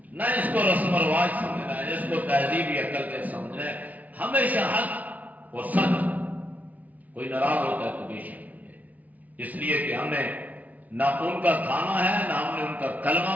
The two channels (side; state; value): left; late; 0.073 ms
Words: نہ اس کو رسم و رواج سمجھنا ہے، اس کو تہذیبی عقل سے سمجھنا ہے. ہمیشہ حق و سچ. کوئی ناراض ہوتا ہے تو بے شک، اس لیے کہ ہم نے نہ ان کا کھانا ہے، نہ ہم نے ان کا کلمہ